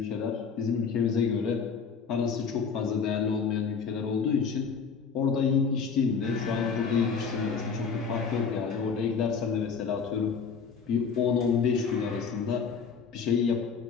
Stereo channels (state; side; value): quieter; right; 5.8 dB